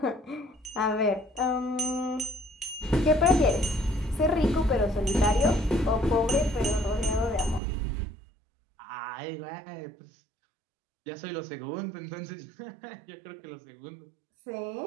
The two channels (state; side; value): drops out; left; at 7.6 s